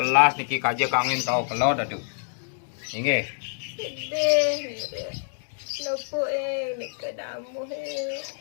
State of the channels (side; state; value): right; silent; digital silence